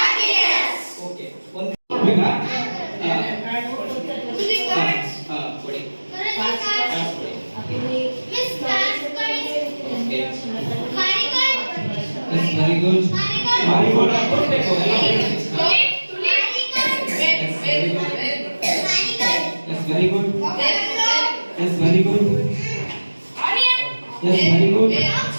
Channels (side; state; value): both; inverted; correlation -1.00